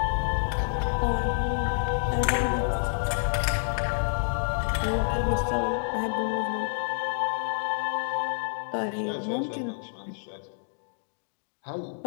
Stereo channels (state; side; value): silent; right; digital silence